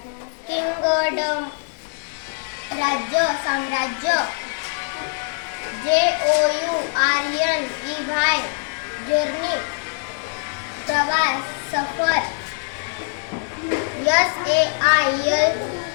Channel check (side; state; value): right; silent; 64 dB below the other